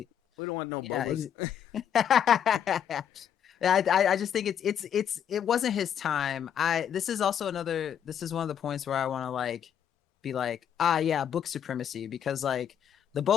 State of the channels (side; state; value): right; quieter; 9.0 dB